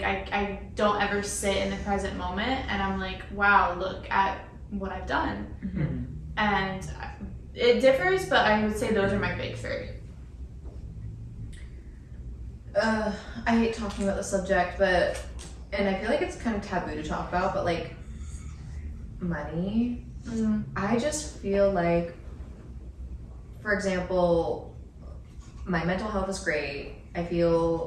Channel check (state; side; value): identical; both; correlation 1.00